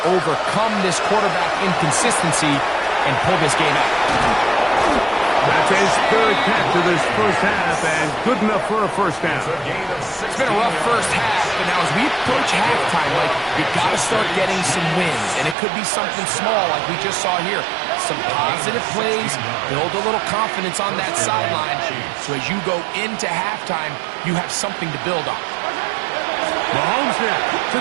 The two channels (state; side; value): drops out; left; at 15.6 s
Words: overcome this quarterback inconsistency and pull this game out? That's his third catch of this first half, and good enough for a first down. It's been a rough first half, but now as we approach halftime, like, you got to start getting some wins, and it could be something small like we just saw here. Some positive plays, build a little confidence on that sideline, so as you go into halftime, you have something to build on. Mahomes now to